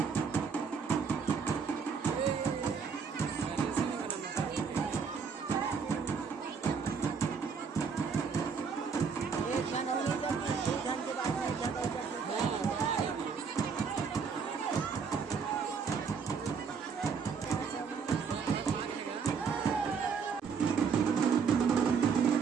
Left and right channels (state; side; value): quieter; left; 5.9 dB